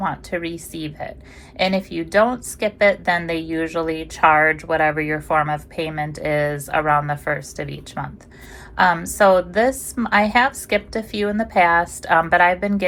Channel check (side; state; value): both; identical; correlation 1.00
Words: to receive it? And if you don't skip it, then they usually charge whatever your form of payment is around the first of each month. So this, I have skipped a few in the past, but I've been